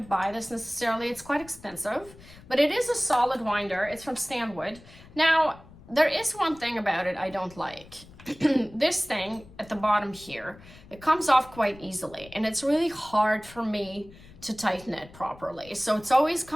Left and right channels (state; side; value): noise; left; rumble, 21 dB below the sound